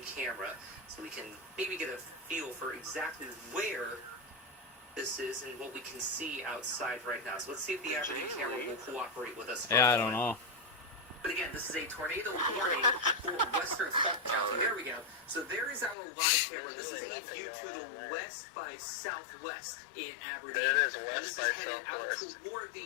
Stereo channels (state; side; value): drops out; right; at 16.0 s